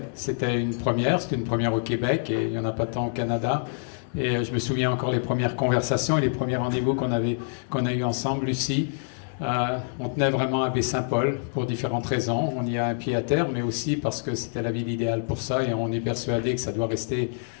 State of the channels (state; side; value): silent; right; digital silence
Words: C'était une première au Québec et il n'y en a pas tant au Canada. Et je me souviens encore les premières conversations et les premiers rendez-vous qu'on a eu ensemble, Lucie. On tenait vraiment à Baie-Saint-Paul pour différentes raisons. On y a un pied à terre, mais aussi parce que c'était la ville idéale pour ça et on est persuadé que ça doit rester